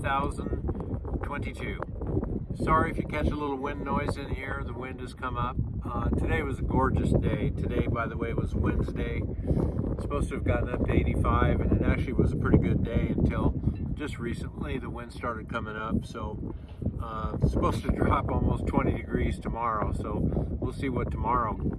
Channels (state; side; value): identical; both; correlation 1.00